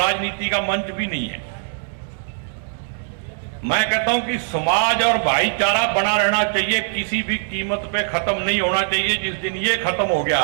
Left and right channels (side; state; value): left; silent; digital silence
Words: का मंच भी नहीं है। मैं कहता हूं कि समाज और भाईचारा बना रहना चाहिए, किसी भी कीमत पे खत्म नहीं होना चाहिए। जिस दिन ये खत्म हो गया